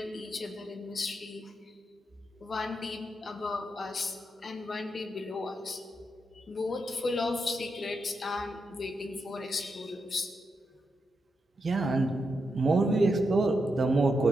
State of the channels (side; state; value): both; normal; correlation 0.84